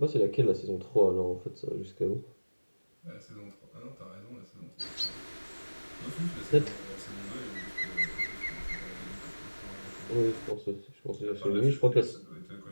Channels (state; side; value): inverted; both; correlation -1.00